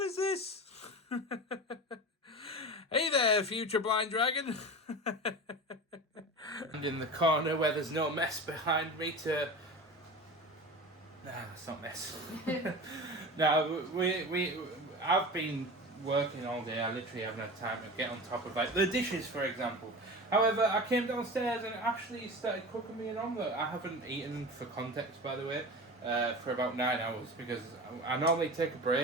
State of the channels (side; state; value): both; normal; correlation 0.31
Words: is this? Hey there, future blind dragon. And in the corner where there's no mess behind me to... Nah, that's not mess. No, I've been working all day, I literally haven't had time to get on top of like the dishes, for example. However, I came downstairs and Ashley started cooking me an omelette. I haven't eaten, for context, by the way, for about 9 hours because I normally take a